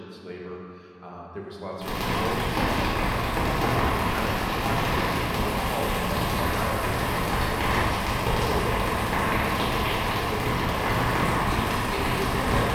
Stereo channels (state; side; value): identical; both; correlation 1.00